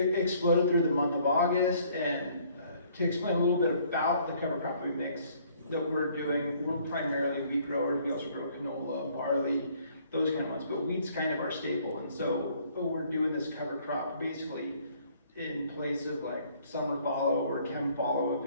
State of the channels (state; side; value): inverted; both; correlation -0.61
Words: exploded through the month of August. And to explain a little bit about the cover crop mix that we're doing, we're primarily wheat growers. We also grow canola, barley, those kind of ones, but wheat's kind of our staple. And so we're doing this cover crop basically in place of like summer fallow or chem fallow, if